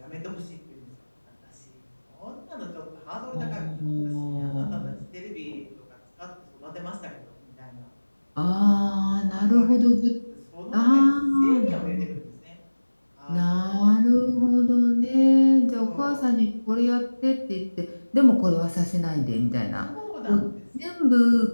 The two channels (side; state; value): both; inverted; correlation -1.00